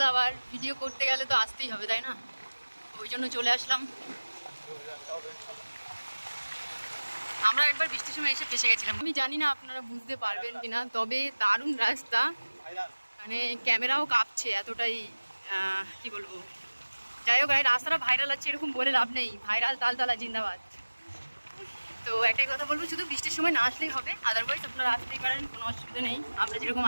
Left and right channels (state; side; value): inverted; both; correlation -1.00